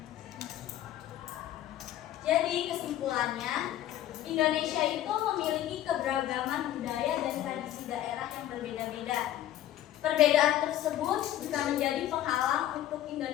Jadi kesimpulannya, Indonesia itu memiliki keberagaman budaya dan tradisi daerah yang berbeda-beda. Perbedaan tersebut bisa menjadi penghalang untuk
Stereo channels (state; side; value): quieter; right; 12.7 dB